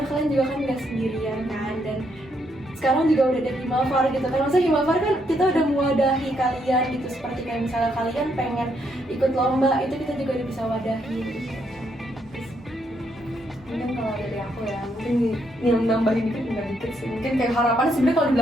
kalian juga kan nggak sendirian kan. Dan sekarang juga udah ada Himafar gitu kan, maksudnya Himafar kan kita udah mewadahi kalian gitu, seperti kayak misalnya kalian pengen ikut lomba, itu kita juga udah bisa wadahi gitu. Mungkin kalau dari aku ya, mungkin nambahin dikit sih. Mungkin kayak harapan, sebenarnya kalau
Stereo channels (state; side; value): normal; both; correlation 0.75